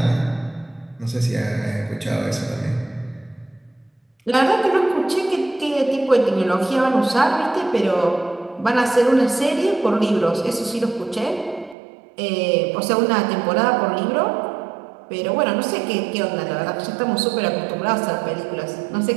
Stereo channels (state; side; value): drops out; left; at 11.8 s